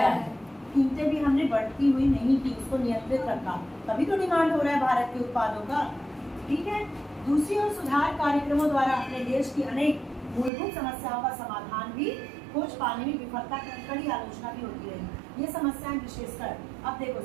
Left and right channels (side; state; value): left; drops out; at 10.5 s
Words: है। कीमतें भी हमने बढ़ती हुई नहीं की, उसको नियंत्रित रखा, तभी तो डिमांड हो रहा है भारत के उत्पादों का। ठीक है, दूसरी ओर सुधार कार्यक्रमों द्वारा अपने देश की अनेक मूलभूत समस्याओं का समाधान भी खोज पाने में विफलता की कड़ी आलोचना भी होती रही। ये समस्याएं विशेषकर, अब देखो